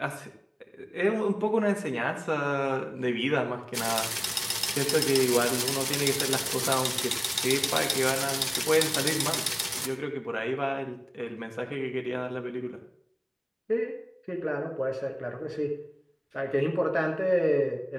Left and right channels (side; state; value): both; identical; correlation 1.00